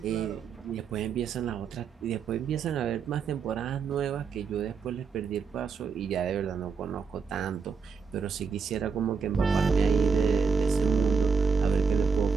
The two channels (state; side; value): quieter; left; 5.5 dB